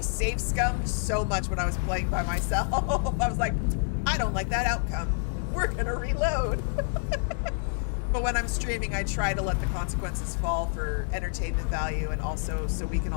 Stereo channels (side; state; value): right; silent; digital silence